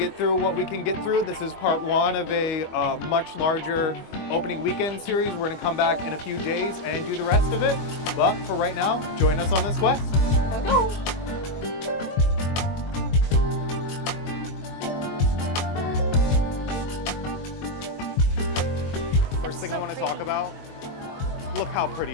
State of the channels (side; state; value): right; late; 22 ms